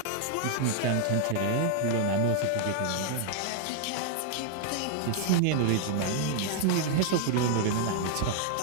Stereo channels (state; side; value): different; both; correlation 0.00